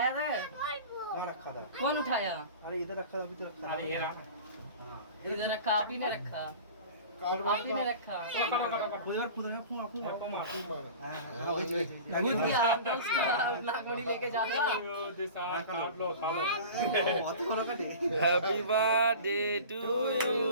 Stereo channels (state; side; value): inverted; both; correlation -0.38